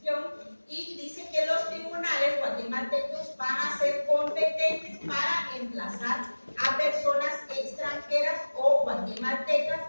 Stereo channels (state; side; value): inverted; both; correlation -1.00